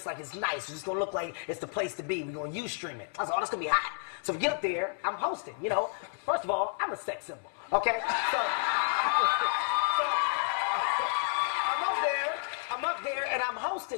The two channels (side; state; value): right; silent; 57 dB below the other